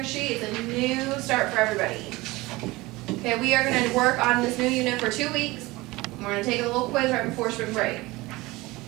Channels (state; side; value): quieter; left; 20.9 dB